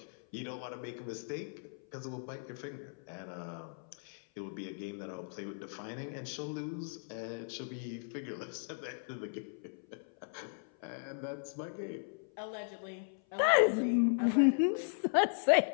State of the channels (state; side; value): silent; right; 53 dB below the other